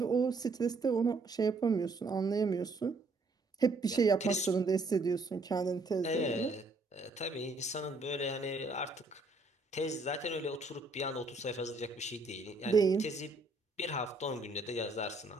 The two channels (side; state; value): left; quieter; 3.2 dB